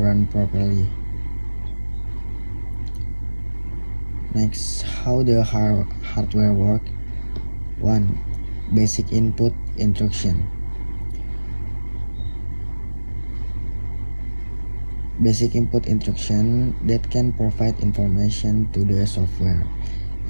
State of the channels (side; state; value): both; inverted; correlation -1.00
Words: properly. Next, how the hardware work? 1. Basic input instruction. Basic input instruction that can provide information to the software,